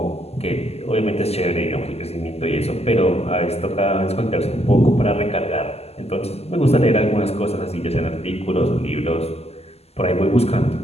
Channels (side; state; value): right; late; 0.30 ms